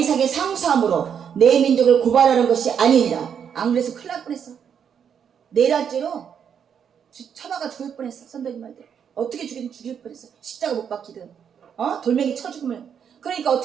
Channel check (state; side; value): quieter; left; 7.8 dB